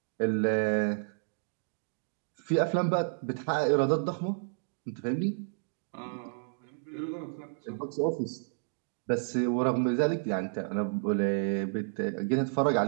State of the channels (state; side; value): silent; left; digital silence